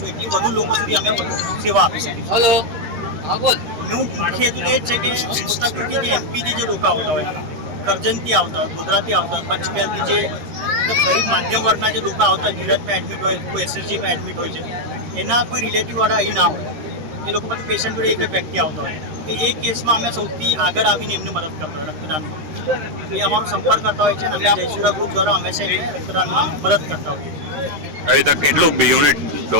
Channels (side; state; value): left; late; 13 ms